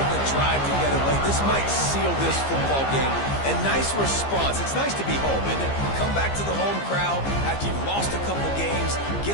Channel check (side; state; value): right; late; 15 ms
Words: the drive together late. This might seal this football game. And nice response. It's nice to be home, isn't it? Come back to the home crowd after you've lost a couple games.